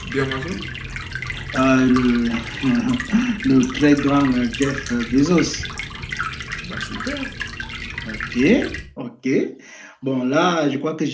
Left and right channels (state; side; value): identical; both; correlation 1.00